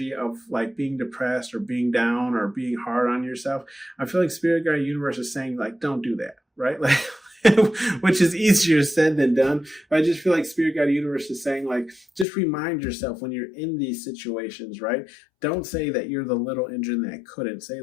of like being depressed or being down or being hard on yourself, I feel like Spirit Guide Universe is saying, like, don't do that, right? Like, which is easier said than done. But I just feel like Spirit Guide Universe is saying, like, just remind yourself when you're in these situations, right? Don't say that you're the little engine that couldn't. Say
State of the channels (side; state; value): right; drops out; at 12.2 s